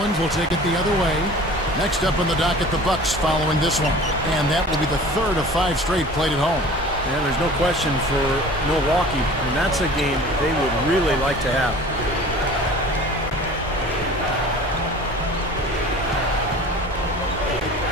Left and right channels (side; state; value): both; normal; correlation 0.43